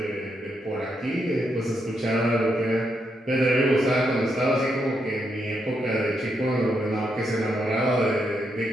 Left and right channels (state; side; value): normal; both; correlation 0.80